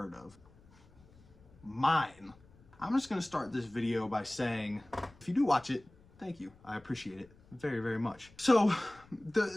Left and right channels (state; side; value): noise; left; rumble, 26 dB below the sound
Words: of. Mine. I'm just going to start this video by saying, if you do watch it, thank you. I appreciate it very, very much. So